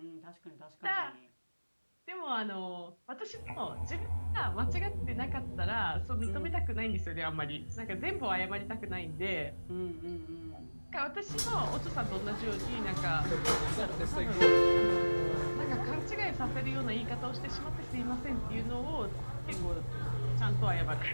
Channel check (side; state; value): both; inverted; correlation -1.00